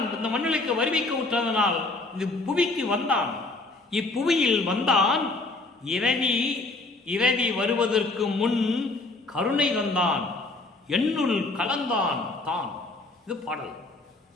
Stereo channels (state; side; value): quieter; right; 3.2 dB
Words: இந்த மண்ணுலகிற்கு வருவிக்க உற்றதனால் இந்த புவிக்கு வந்தான். இப்புவியில் வந்தான். இரவி வருவதற்கு முன் கருணை தந்தான், என்னுள் கலந்தான் தான். இது பாடல்.